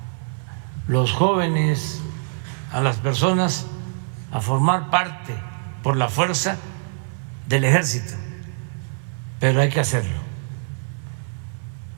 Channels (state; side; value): silent; left; 58 dB below the other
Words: los jóvenes, a las personas a formar parte por la fuerza del ejército, pero hay que hacerlo.